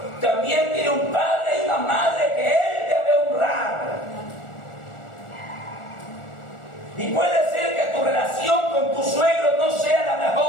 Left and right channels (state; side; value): late; right; 1.4 ms